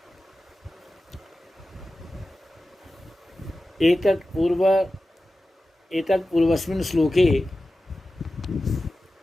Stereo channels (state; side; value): normal; both; correlation 0.94